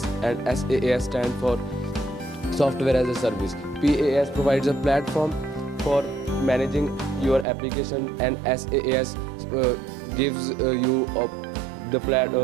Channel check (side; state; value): left; drops out; at 7.5 s